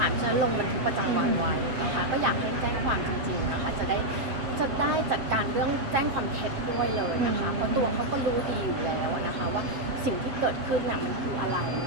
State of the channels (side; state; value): left; late; 7.6 ms